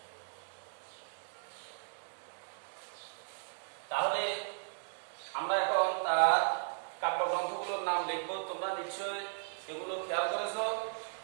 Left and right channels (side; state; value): left; silent; digital silence